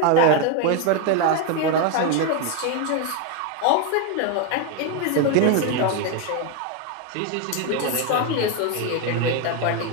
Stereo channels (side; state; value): both; different; correlation 0.02